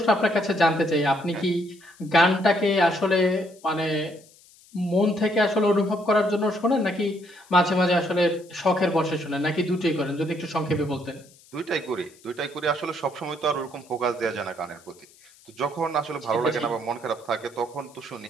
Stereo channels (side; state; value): left; noise; hiss, 26 dB below the sound